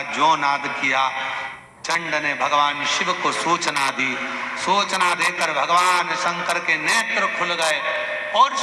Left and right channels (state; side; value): identical; both; correlation 1.00